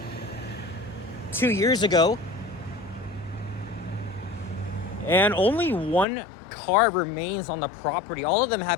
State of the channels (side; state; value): right; drops out; at 6.1 s